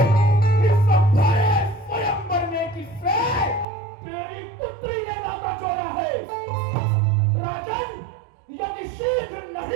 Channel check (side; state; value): left; drops out; at 3.7 s